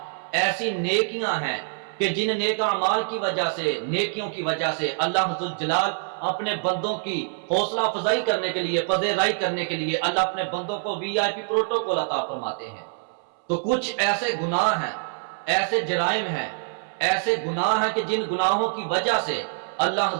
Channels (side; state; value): left; silent; 62 dB below the other